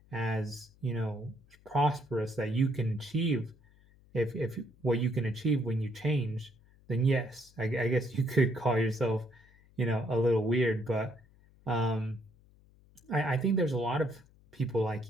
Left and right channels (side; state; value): left; noise; hum, 28 dB below the sound